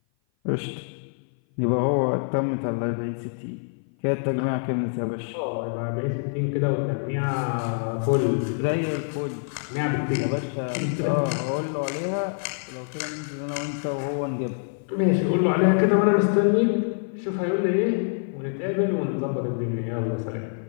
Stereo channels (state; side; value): silent; right; 55 dB below the other